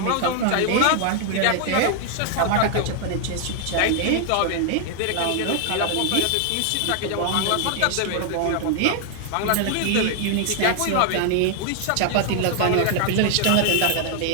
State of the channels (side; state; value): both; different; correlation 0.00